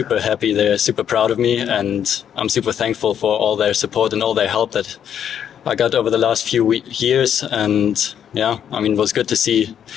happy. They're super proud of me, and I'm super thankful for all their support and all their help that I got over the last few years. And yeah, I mean, it was good to see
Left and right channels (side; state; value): right; quieter; 9.1 dB